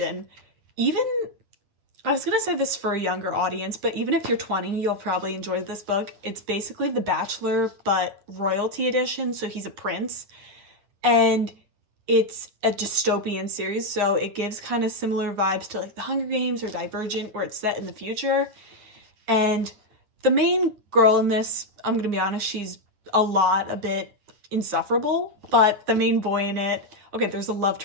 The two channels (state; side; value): late; left; 9.6 ms